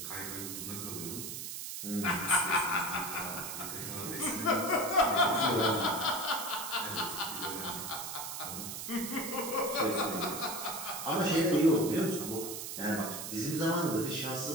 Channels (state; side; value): noise; right; hiss, 6 dB below the sound